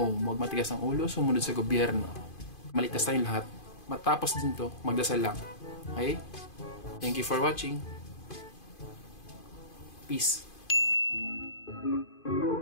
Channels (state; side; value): late; right; 2.5 ms